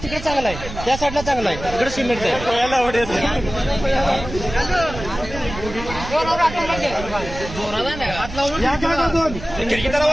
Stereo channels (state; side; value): noise; right; rumble, 11 dB below the sound